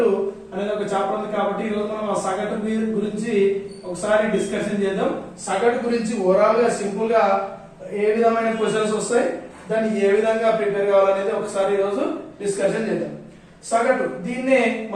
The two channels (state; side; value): identical; both; correlation 1.00